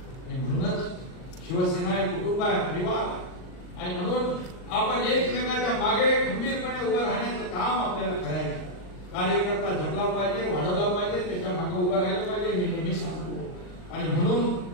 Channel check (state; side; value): late; right; 39 ms